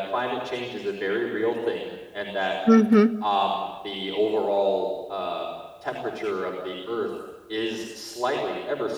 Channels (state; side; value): identical; both; correlation 1.00